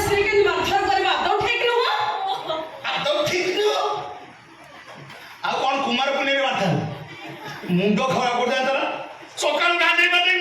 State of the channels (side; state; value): both; identical; correlation 1.00